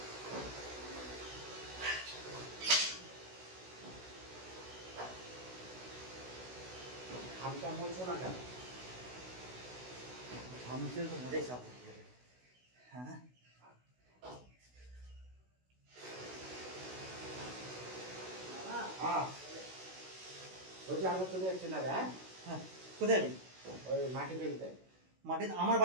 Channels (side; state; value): left; late; 16 ms